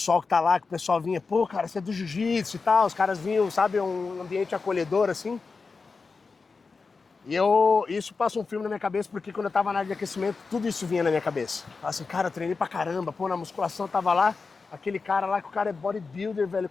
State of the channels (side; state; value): right; quieter; 4.5 dB